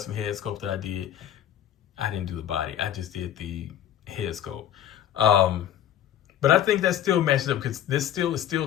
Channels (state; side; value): quieter; right; 10.9 dB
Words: head sculpt that I did. I didn't do the body. I just did the head sculpt. But I think that still matches up because this is still